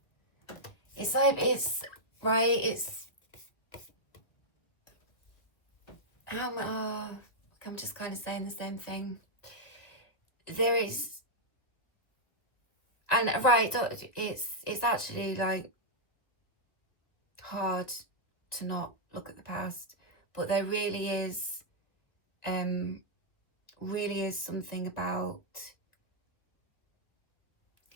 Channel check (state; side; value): late; right; 1.6 ms